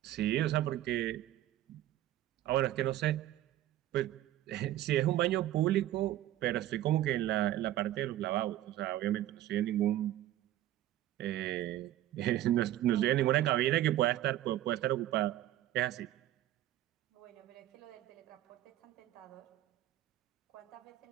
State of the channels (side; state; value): left; quieter; 13.7 dB